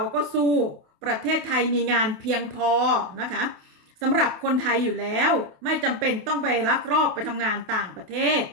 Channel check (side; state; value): left; late; 28 ms